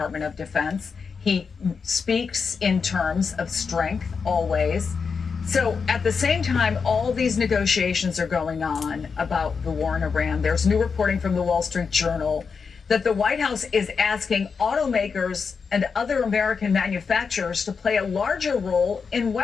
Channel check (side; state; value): right; quieter; 5.5 dB